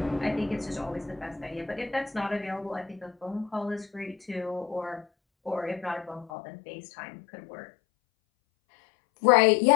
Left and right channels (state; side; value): drops out; right; at 6.3 s